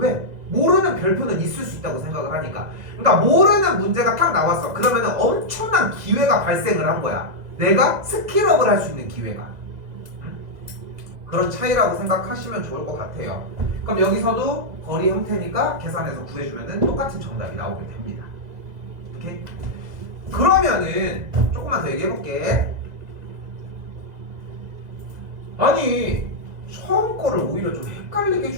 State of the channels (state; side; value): late; left; 2.0 ms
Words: 모르는 별표는 있을 수 있다고 생각을 하니까. 그러니까 모르는 문제가 딱 나왔어. 그러면은 엄청난 기회가 발생을 한 거야. 내가 스킬업을 할 수 있는 기회가. 그런 차이라고 생각하시면 좋을 것 같아요. 그럼 여기서도 거리 형태니까 계산해서 구해주면은 똑같은 정답이 나오게 됩니다. 오케이? 그러면은 조금만 더 얘기해볼게. 아니 처음 거를 오히려 좀 헷갈리게